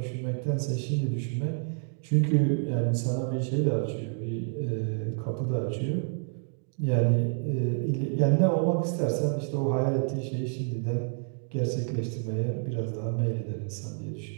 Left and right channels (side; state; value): left; silent; 59 dB below the other